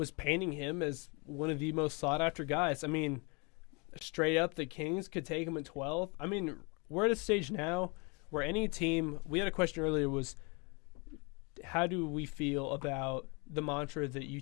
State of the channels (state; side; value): quieter; right; 31.2 dB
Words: painting him as one of the most sought after guys. I mean, straight up, the Kings could take him at 12th. I mean, we're at a stage now where any team. We had a question earlier was, how do we feel about the mantra that you